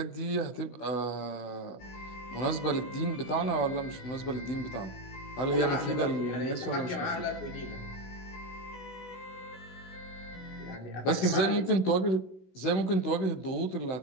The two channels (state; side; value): late; right; 16 ms